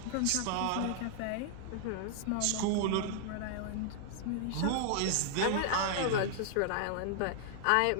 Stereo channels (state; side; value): different; both; correlation -0.01